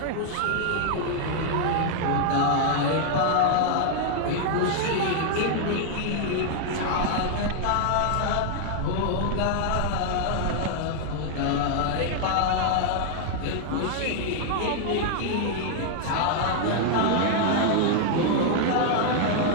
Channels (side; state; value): both; different; correlation 0.00